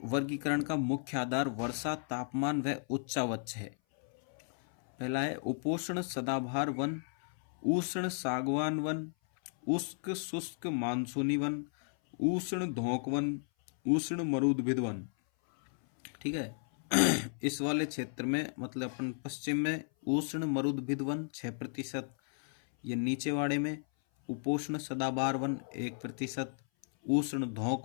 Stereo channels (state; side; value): silent; right; 55 dB below the other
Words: वर्गीकरण का मुख्य आधार वर्षा, तापमान व उच्चावच है। पहला है उपोष्ण सदाबहार वन, उष्ण सागवान वन, उष्ण शुष्क मानसूनी वन, उष्ण धोंक वन, उष्ण मरुद्भिद वन। ठीक है, इस वाले क्षेत्र में मतलब अपन पश्चिम में उष्ण मरुद्भिद वन 6%, ये नीचे वाले में उपोष्ण सदाबहार वन 1%, उष्ण